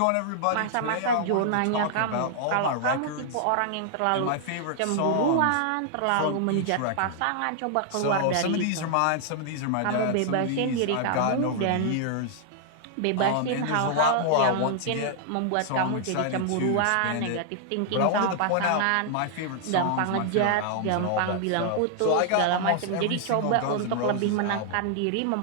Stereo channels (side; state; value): both; different; correlation 0.00